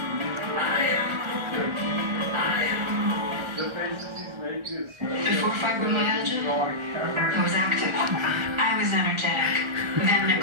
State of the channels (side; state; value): left; late; 1.3 ms